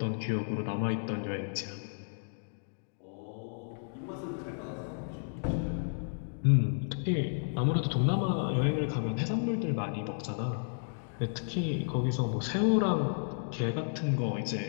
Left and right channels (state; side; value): silent; right; digital silence